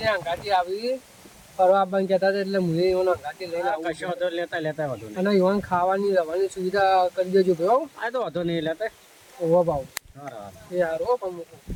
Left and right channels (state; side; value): identical; both; correlation 1.00